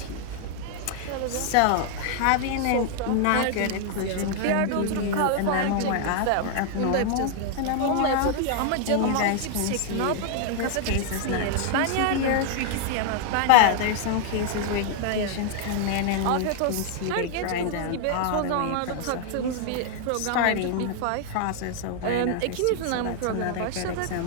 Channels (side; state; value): both; different; correlation 0.00